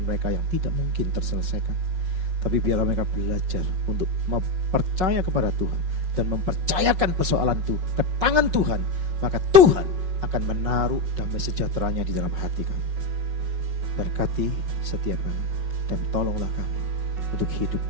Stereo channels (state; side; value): late; left; 5.4 ms